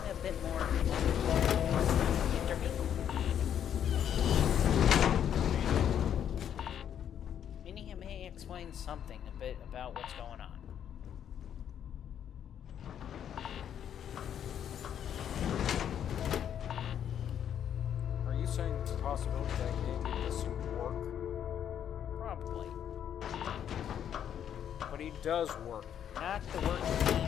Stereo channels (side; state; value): right; quieter; 9.4 dB